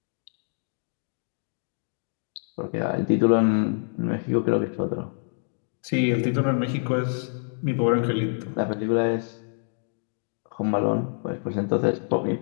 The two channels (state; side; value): silent; right; digital silence